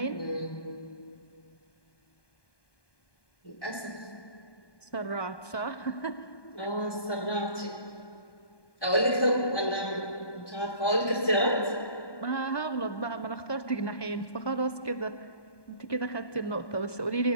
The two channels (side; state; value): right; late; 1.2 ms